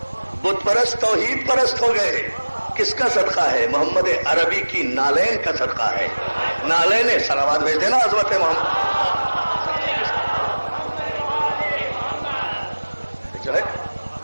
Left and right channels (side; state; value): both; inverted; correlation -1.00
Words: بت پرست توحید پرست ہو گئے۔ کس کا صدقہ ہے؟ محمد عربی کی نالین کا صدقہ ہے۔ نالین صلوات بھیج دینا عظمت محمد جو ہے